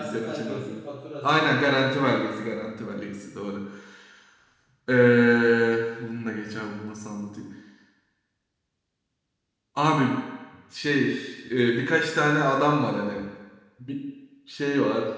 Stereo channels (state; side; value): identical; both; correlation 1.00